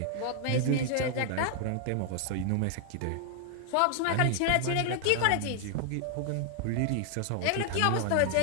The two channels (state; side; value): different; both; correlation 0.00